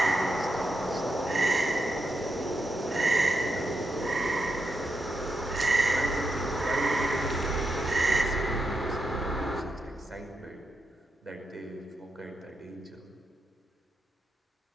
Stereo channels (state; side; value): normal; both; correlation 0.85